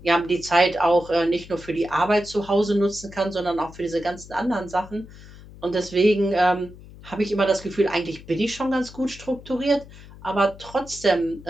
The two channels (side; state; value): left; noise; hum, 18 dB below the sound